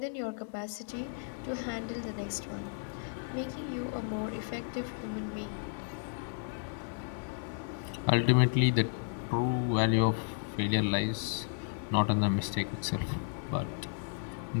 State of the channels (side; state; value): right; silent; digital silence